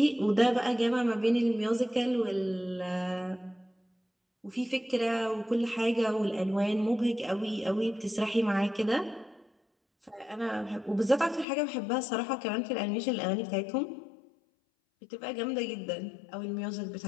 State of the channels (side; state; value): right; drops out; at 11.5 s